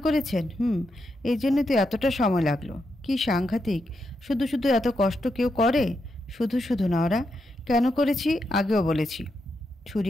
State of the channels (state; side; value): normal; both; correlation 0.84